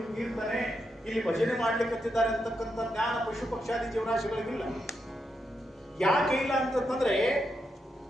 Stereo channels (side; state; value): both; normal; correlation 0.83